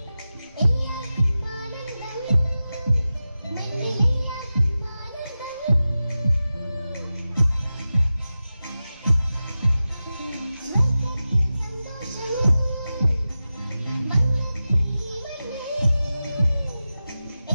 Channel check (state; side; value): inverted; both; correlation -0.94